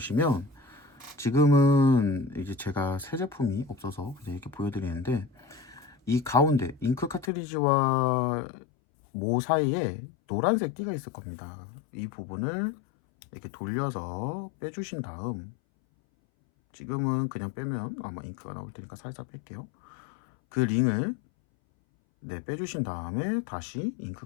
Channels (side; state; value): right; drops out; at 7.3 s